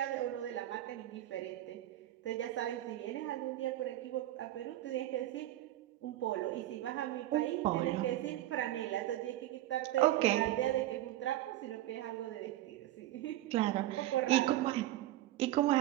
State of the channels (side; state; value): left; quieter; 14.5 dB